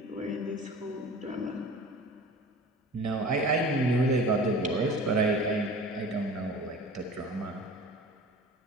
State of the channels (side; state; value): both; normal; correlation 0.40